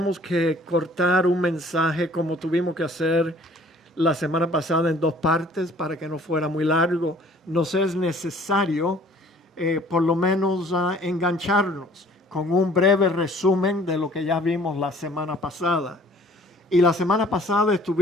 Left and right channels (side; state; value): both; normal; correlation 0.54